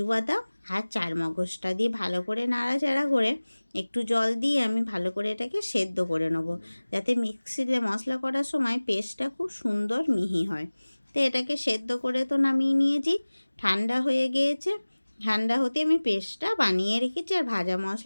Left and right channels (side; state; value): both; inverted; correlation -1.00